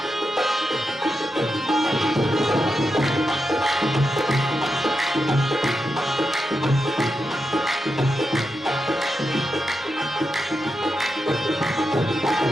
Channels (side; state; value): both; normal; correlation 0.87